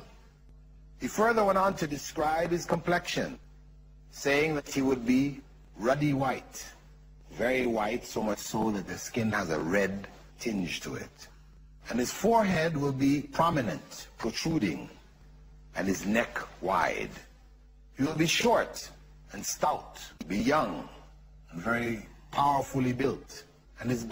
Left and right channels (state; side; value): identical; both; correlation 1.00